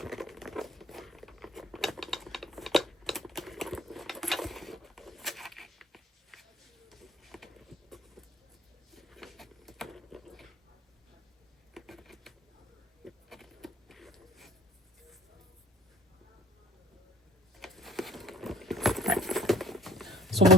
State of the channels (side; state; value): both; normal; correlation 0.52